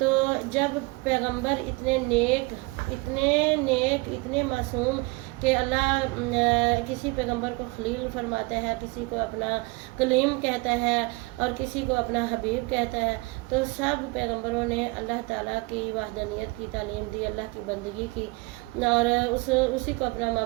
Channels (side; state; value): left; quieter; 25.6 dB